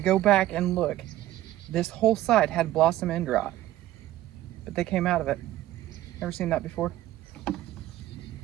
back and look. This whole side had blossom end rot, but they came out of it. Never seen that before.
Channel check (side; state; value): left; quieter; 14.8 dB